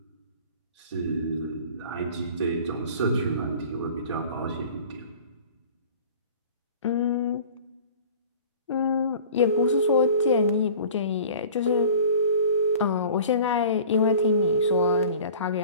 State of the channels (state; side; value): inverted; both; correlation -0.44